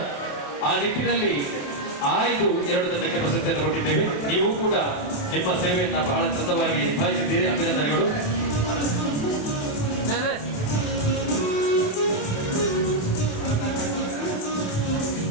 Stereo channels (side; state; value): right; late; 28 ms